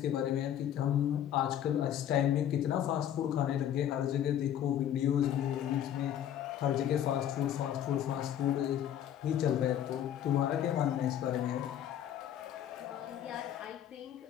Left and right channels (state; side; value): quieter; right; 10.5 dB